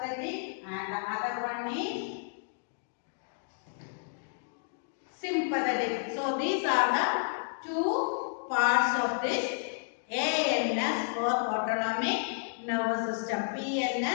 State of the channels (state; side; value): silent; right; digital silence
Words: and the other one is sympathetic. So these are the two parts of this ANS or autonomic nervous system,